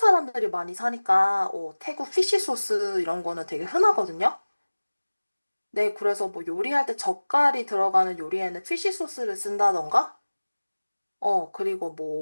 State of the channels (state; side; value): inverted; both; correlation -1.00